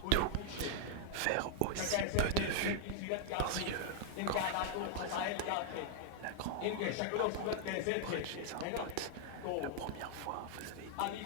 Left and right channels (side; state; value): both; different; correlation -0.01